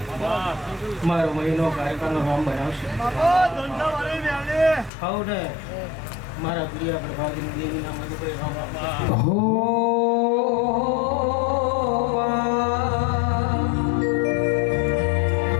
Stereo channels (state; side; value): drops out; right; at 4.9 s